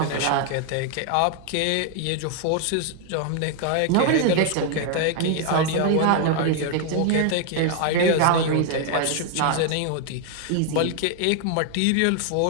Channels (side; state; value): both; different; correlation 0.00